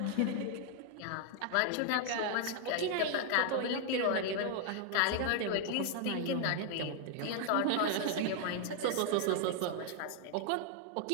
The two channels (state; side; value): different; both; correlation 0.00